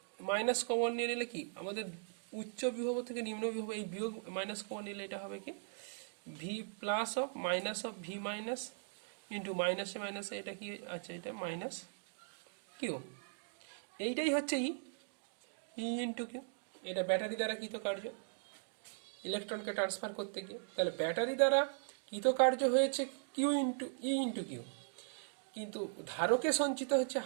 মাইনাস কমন নিয়ে নিলে কি আমাদের উচ্চ বিভব থেকে নিম্ন বিভব, এই বিয়োগ মাইনাস কমন নিলে এটা হবে কি V plus of minus of V minus into মাইনাসে মাইনাসে এটা কি আছে, এটা মাইনাস কিউ। এইটাই হচ্ছে ই ইন্টু কিউ। এটা ব্যাটারি দ্বারা কৃতকার্য ইলেকট্রনকে ট্রান্সফার করতে গিয়ে। তাহলে ব্যাটারি দ্বারা কৃতকার্য হয়েছে কিউ ইন্টু ই ইন্টু কিউ, কিন্তু ধারকে সঞ্চিত হচ্ছে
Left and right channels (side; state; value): left; silent; digital silence